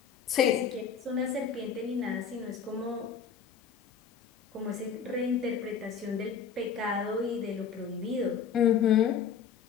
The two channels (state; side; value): quieter; right; 7.0 dB